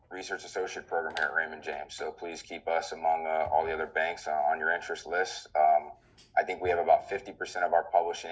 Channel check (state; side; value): identical; both; correlation 1.00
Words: research associate program here at Raymond James. So please keep us among all the other banks on your interest list. I think we have about 50% of our publishing